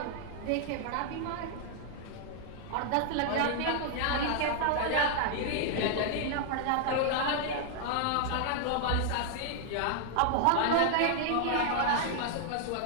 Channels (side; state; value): both; different; correlation 0.00